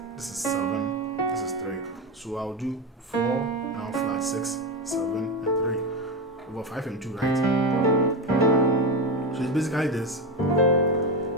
this is 7, this is 3. So I'll do 4, now flat 6, 7, and 3. Over 5 and 2, right? So it's basically this. Have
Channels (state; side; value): normal; both; correlation 0.16